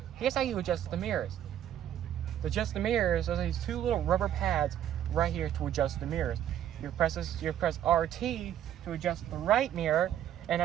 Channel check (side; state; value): left; quieter; 10.8 dB